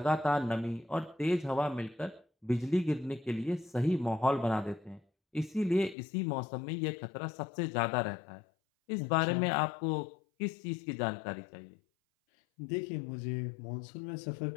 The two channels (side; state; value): right; drops out; at 6.0 s